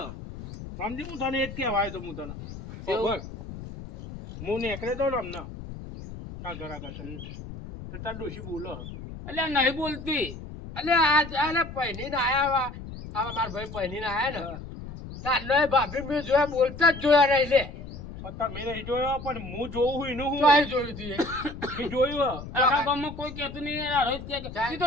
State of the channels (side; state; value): left; noise; rumble, 11 dB below the sound